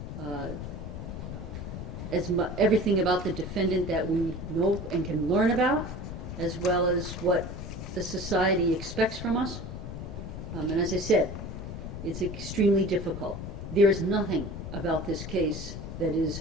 everything about the defendant that we know and can learn about, as well as what the society expects from us. And as I said, it's extremely difficult. There is nothing about this case that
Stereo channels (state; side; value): noise; left; rumble, 8 dB below the sound